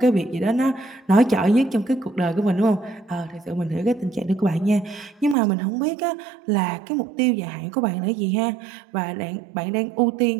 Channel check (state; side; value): drops out; left; at 5.4 s